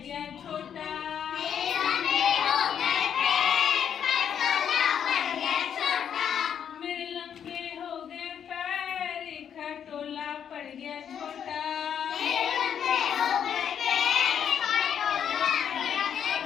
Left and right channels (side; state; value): right; quieter; 8.5 dB